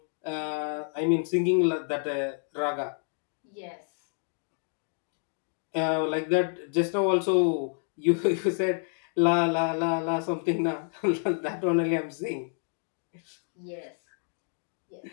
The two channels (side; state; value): right; silent; 59 dB below the other